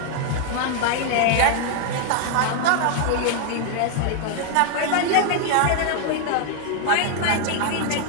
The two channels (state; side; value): different; both; correlation 0.00